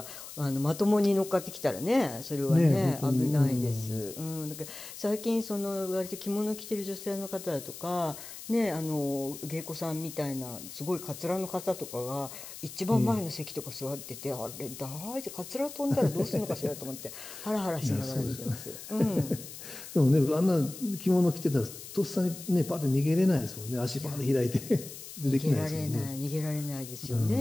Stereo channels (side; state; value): left; noise; hiss, 13 dB below the sound